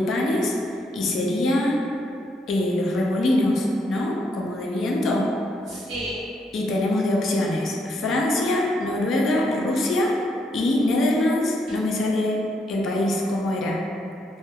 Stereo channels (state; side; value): normal; both; correlation 0.76